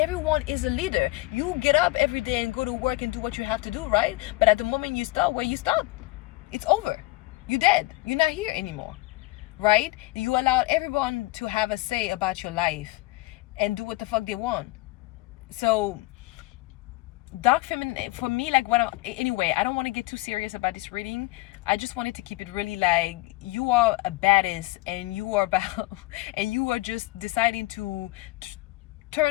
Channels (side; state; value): right; quieter; 21.0 dB